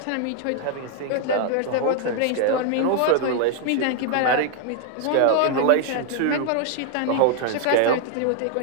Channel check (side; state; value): both; different; correlation 0.00